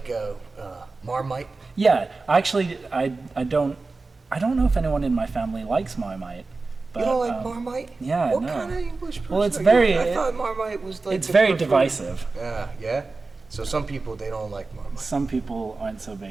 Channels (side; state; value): left; quieter; 3.8 dB